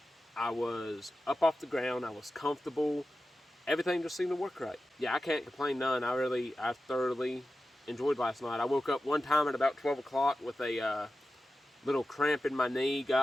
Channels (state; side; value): normal; both; correlation 0.93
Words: I was up off the ground. I was comfortable. Everything just seemed to work right. Yeah, I can't complain none. I thoroughly enjoyed last night. I woke up one time at about 12 o'clock with a little cramp in my knee,